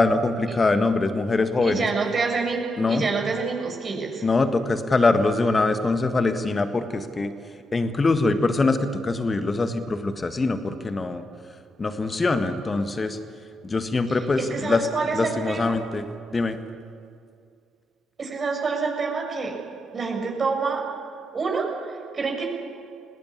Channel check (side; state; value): both; normal; correlation 0.85